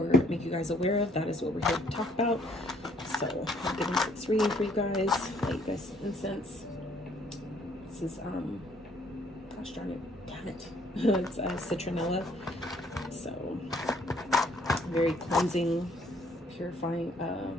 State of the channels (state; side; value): normal; both; correlation 0.64